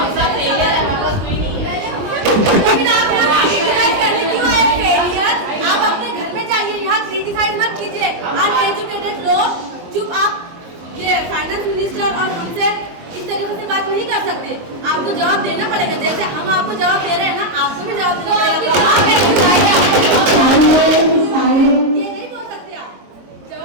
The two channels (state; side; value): late; left; 22 ms